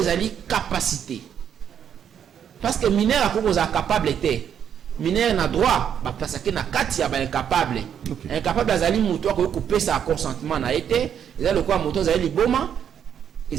capacité. Parce que mineur akoko za capable était mineur na droit ba parce que na kati ya ba incapable. Incapable azali mutu ko couper sa consentement na été ezali ko mutu azali liboma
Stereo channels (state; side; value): quieter; left; 8.7 dB